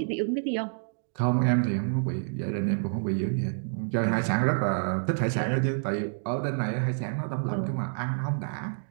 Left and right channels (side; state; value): left; silent; digital silence